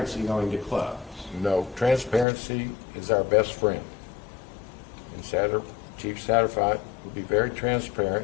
going to close? no, transparency is our best friend. And Chief Satterwhite will be very transparent,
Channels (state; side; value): drops out; right; at 2.2 s